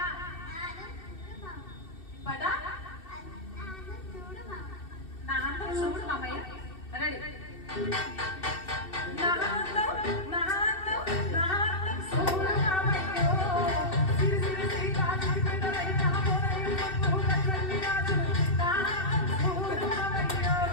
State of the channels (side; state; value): right; late; 2.7 ms